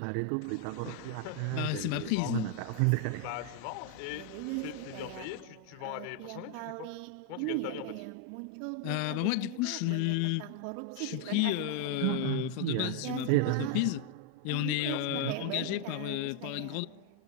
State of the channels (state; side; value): different; both; correlation 0.00